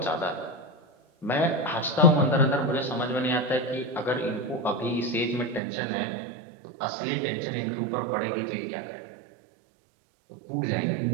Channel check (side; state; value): left; drops out; at 5.6 s